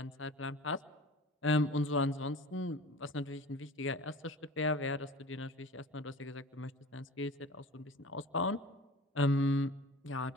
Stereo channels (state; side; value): normal; both; correlation 0.39